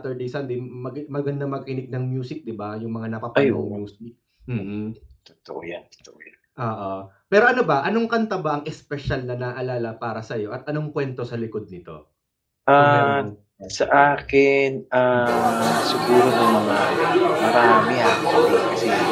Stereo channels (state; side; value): identical; both; correlation 1.00